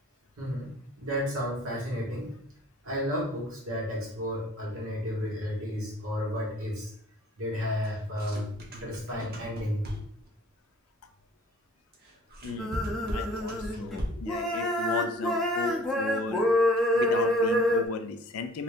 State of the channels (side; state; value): both; normal; correlation 0.51